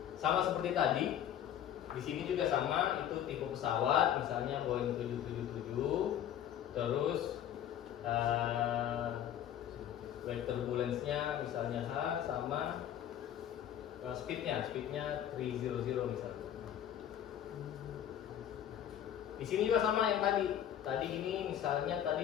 sama seperti tadi. Di sini juga sama, itu tipe pesawat, misalnya Boeing 777. Terus wave turbulence-nya misalnya H, sama speednya 300 misalnya. Di sini juga sama yang tadi. Tadi ini misalnya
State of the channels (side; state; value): right; quieter; 10.4 dB